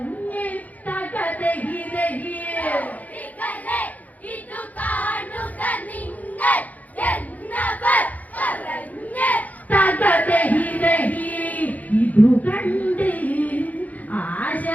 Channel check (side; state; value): right; late; 0.077 ms